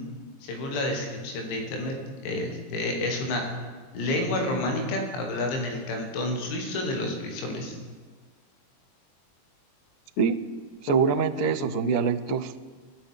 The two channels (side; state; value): right; late; 22 ms